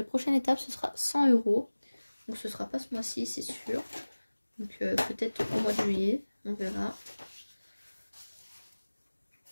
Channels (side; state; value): both; inverted; correlation -1.00